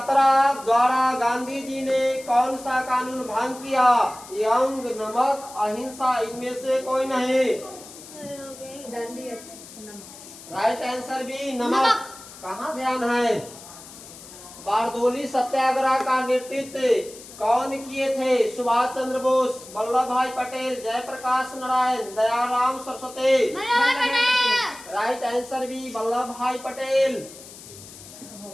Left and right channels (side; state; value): left; noise; hiss, 17 dB below the sound